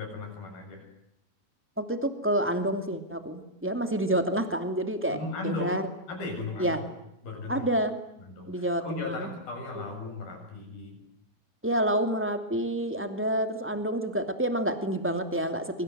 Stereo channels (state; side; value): normal; both; correlation -0.10